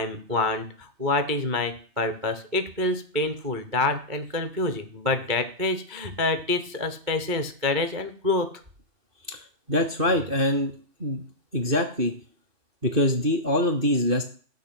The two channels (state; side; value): late; left; 2.6 ms